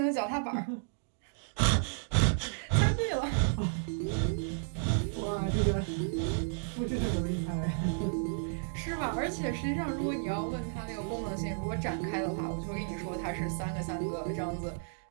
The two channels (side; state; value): left; silent; digital silence